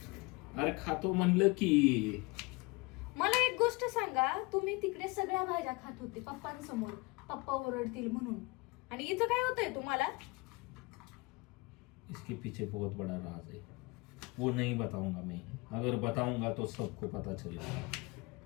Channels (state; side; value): quieter; right; 25.4 dB